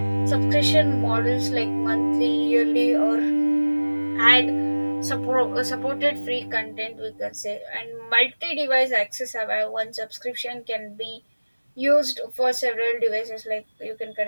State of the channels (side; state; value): both; inverted; correlation -1.00